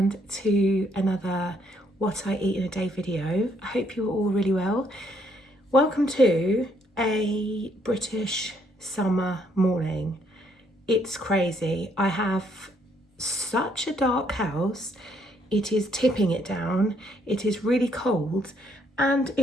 to another what I eat in a day video. I hope you're all really well. Welcome to a British summer morning. It's crazy. I have such a dark house. It is tipping it down. It is really cold and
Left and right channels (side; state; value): both; normal; correlation 0.70